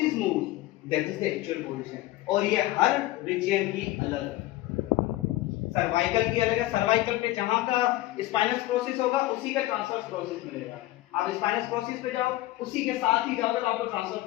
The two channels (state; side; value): quieter; right; 17.0 dB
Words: moves, that is the actual position. और ये हर रीजन की अलग है। सर्वाइकल की अलग है, सर्वाइकल पे जहां का स्पाइनस प्रोसेस होगा उसी का ट्रांसवर्स प्रोसेस मिलेगा। आप स्पाइनस प्रोसेस पे जाओ, उसी के साथ ही जाओगे तो आपको ट्रांसवर्स